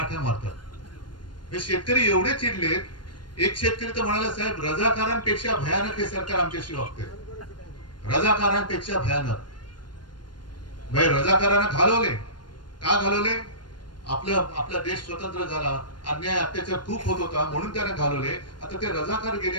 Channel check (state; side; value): late; right; 0.71 ms